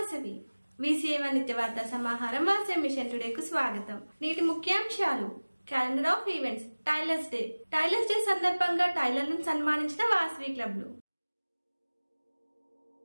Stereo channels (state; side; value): inverted; both; correlation -1.00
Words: Vasavi VCA1 నిత్యవార్తా సమాహారం Vasavi machine టుడేకు స్వాగతం. నేటి ముఖ్యాంశాలు: calendar of events, tailors day సందర్భంగా టైలర్లను సన్మానించిన వాసవి క్లబ్లు.